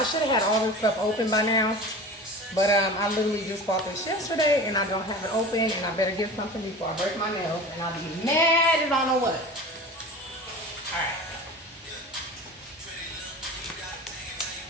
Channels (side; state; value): both; normal; correlation 0.35